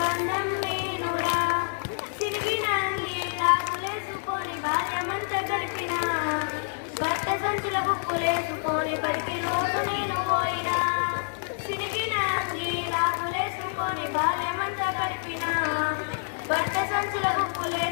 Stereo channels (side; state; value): right; silent; digital silence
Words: బంధం నేనురా. తిరిగిన లాగులేసుకొని బాల్యమంత గడిపిన, భర్త సంచుల బుక్కులేసుకొని బడికి రోజు నేను పోయినా. తిరిగిన లాగులేసుకొని బాల్యమంత గడిపిన, భర్త సంచుల